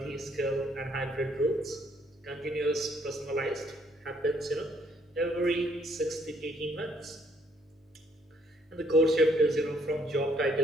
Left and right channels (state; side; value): normal; both; correlation 0.67